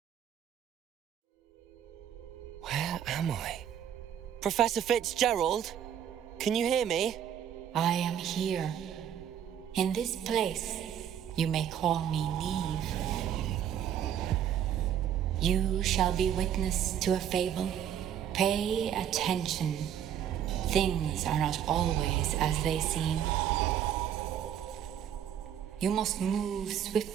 Where am I? Professor Fitzgerald? Can you hear me? I am here. In this place, you may call me Neve. You shall be witness to a fable. Pay attention. Things are not always as they seem. You must move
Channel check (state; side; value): quieter; left; 9.6 dB